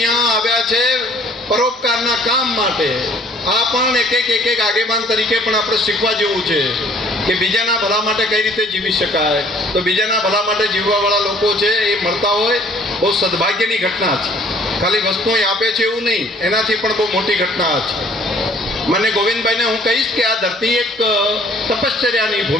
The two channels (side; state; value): both; normal; correlation 0.56